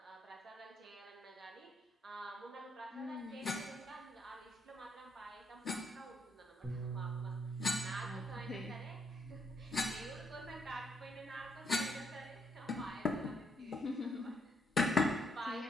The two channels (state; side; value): normal; both; correlation 0.73